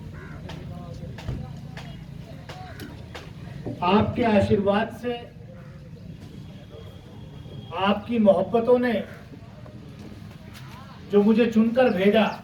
आपके आशीर्वाद से, आपकी मोहब्बतों ने जो मुझे चुनकर भेजा,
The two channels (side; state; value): both; identical; correlation 1.00